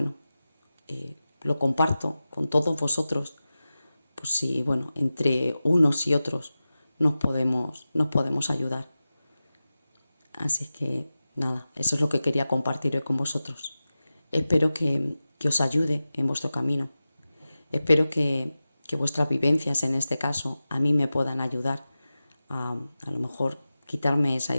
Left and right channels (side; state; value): both; inverted; correlation -0.95